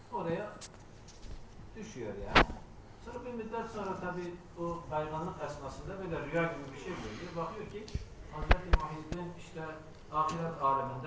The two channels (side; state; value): both; identical; correlation 1.00